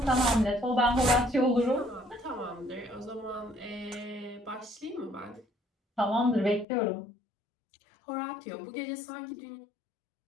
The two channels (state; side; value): drops out; right; at 6.7 s